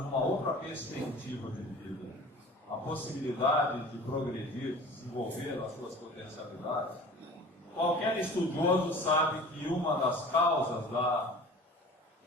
uma outra perspectiva de vida, a possibilidade de progredir, de desenvolver as suas potencialidades. Qualquer estudioso sabe que uma das causas da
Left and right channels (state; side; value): normal; both; correlation 0.42